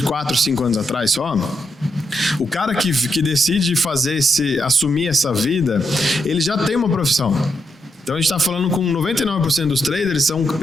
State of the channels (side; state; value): both; normal; correlation 0.82